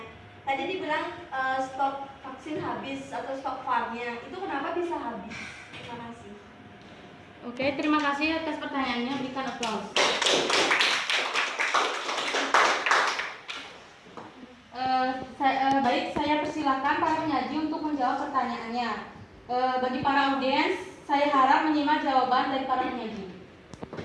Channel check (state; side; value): identical; both; correlation 1.00